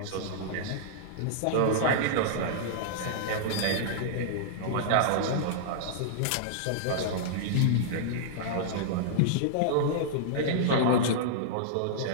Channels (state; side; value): different; both; correlation -0.02